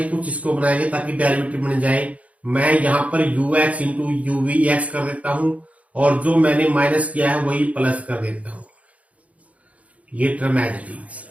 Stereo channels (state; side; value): late; left; 0.067 ms